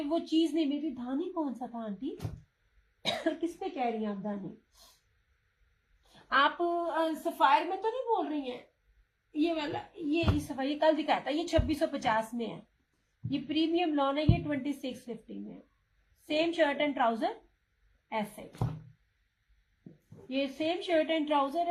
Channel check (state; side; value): identical; both; correlation 1.00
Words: वो चीज नहीं मिली। धानी कौन सा था आंटी? किस पे कह रही हैं आप धानी? आप सफायर में तो नहीं बोल रही हैं? ये वाला ये सफायर ये कल दिखाया था, ये 2650 में है। ये प्रीमियम लॉन है, ये 2650 में है। सेम शर्ट एंड ट्राउजर ऐसे, ये सेम शर्ट एंड ट्राउजर